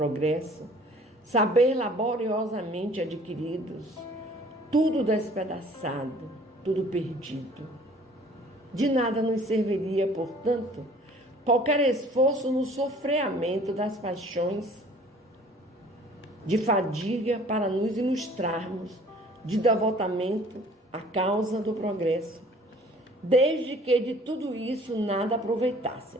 saber laboriosamente adquiridos, tudo despedaçado, tudo perdido. De nada nos serviria, portanto, qualquer esforço no sofreamento das paixões, de fadiga para nos ilustrarmos de devotamento à causa do progresso, desde que de tudo isso nada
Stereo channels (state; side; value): normal; both; correlation 0.52